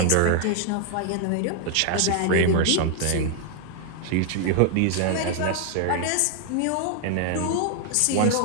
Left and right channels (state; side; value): different; both; correlation 0.00